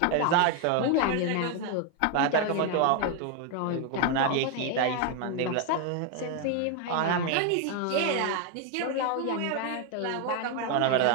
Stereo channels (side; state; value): both; different; correlation 0.01